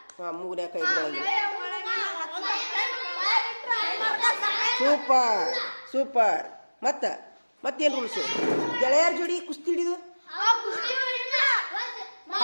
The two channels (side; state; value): both; inverted; correlation -1.00